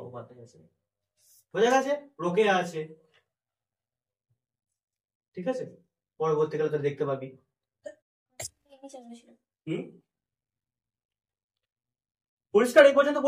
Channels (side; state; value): both; identical; correlation 1.00